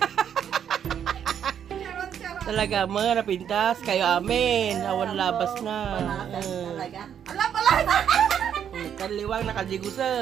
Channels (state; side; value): quieter; left; 8.9 dB